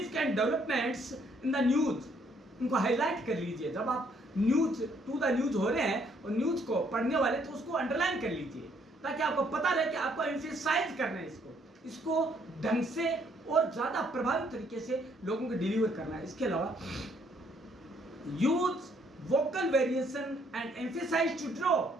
developments in the news, इनको हाईलाइट कर लीजिए। जब आप न्यूज टू द न्यूज हो रहे हैं और न्यूज को पढ़ने वाले, तो उसको अंडरलाइन कर लीजिए ताकि आपको पता रहे कि आपको एम्फसाइज करना है इसको ढंग से और ज्यादा प्रभावी तरीके से लोगों को डिलीवर करना है। इसके अलावा use vocal variation and emphasize to draw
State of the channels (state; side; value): normal; both; correlation 0.67